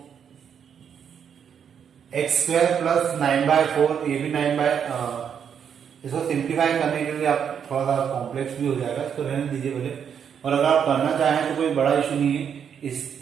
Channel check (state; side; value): quieter; left; 7.8 dB